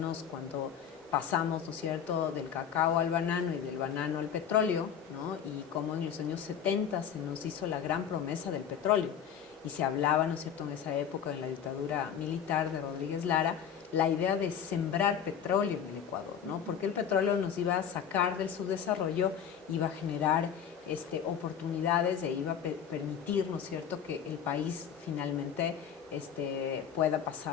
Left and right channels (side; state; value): right; quieter; 8.2 dB